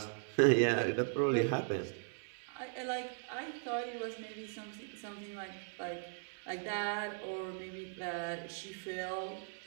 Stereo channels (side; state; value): left; silent; digital silence